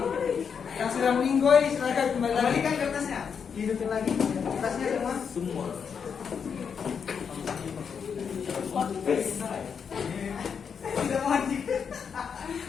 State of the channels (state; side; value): quieter; right; 6.7 dB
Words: Yang sudah meninggoy, silakan kembali lagi. Kembalikan kertasnya. Hidupin lagi kertasnya semua. Semua. Tidak maju.